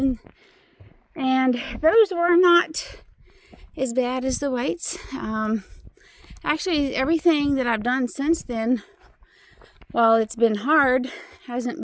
And those were not as bad as the whites. Actually, everything that I've done since then, while it's been hard, hasn't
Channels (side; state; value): both; identical; correlation 1.00